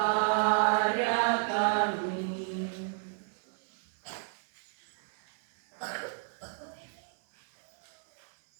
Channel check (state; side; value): silent; left; digital silence